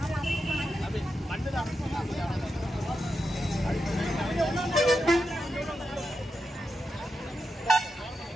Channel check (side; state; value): both; normal; correlation 0.88